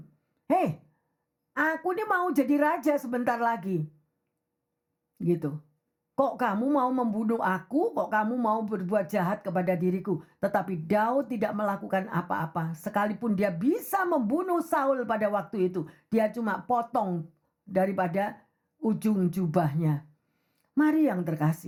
"Hei, aku ini mau jadi raja sebentar lagi." Gitu. Kok kamu mau membunuh aku? Kok kamu mau berbuat jahat kepada diriku? Tetapi Daud tidak melakukan apa-apa. Sekalipun dia bisa membunuh Saul pada waktu itu, dia cuma potong daripada ujung jubahnya. Mari yang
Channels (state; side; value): identical; both; correlation 1.00